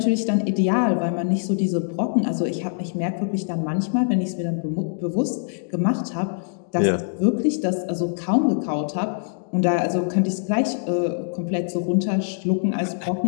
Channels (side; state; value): right; silent; digital silence